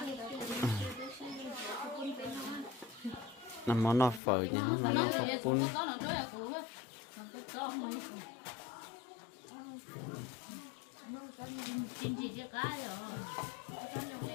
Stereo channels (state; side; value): drops out; right; at 4.2 s